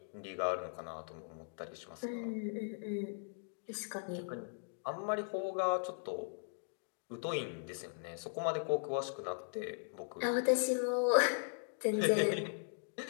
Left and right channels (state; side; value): silent; right; digital silence